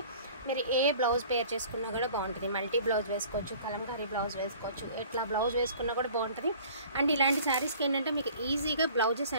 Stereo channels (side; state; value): both; inverted; correlation -0.48